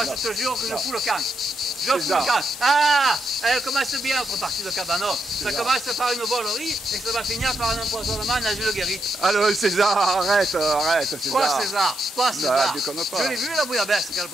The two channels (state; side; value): normal; both; correlation 0.80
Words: je te jure que je fous le camp. Je fous ça. le camp. Ah, elle commence bien notre partie de cabanon. Ça commence par une volerie et ça va finir par un empoisonnement dans une guérite. Alors César, arrête César. Quoi, César? Quoi, César? déconne pas. Je l'ai vu la bouillabaisse qu'elle